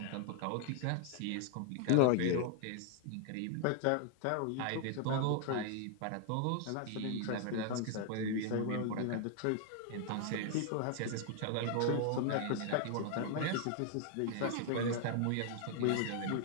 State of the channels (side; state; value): both; different; correlation 0.00